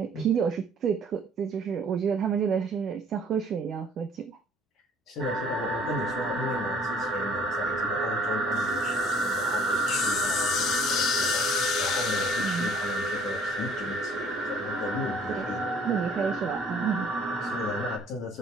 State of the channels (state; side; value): normal; both; correlation 0.56